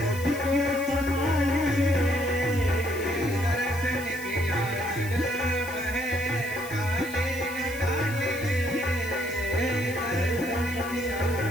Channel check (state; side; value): noise; left; hiss, 14 dB below the sound